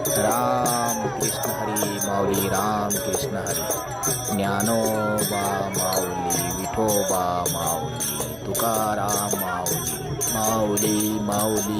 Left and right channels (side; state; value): both; identical; correlation 1.00